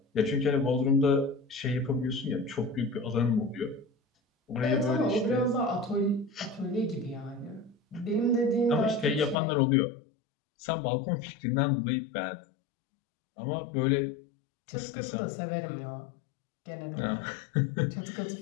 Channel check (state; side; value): drops out; right; at 9.3 s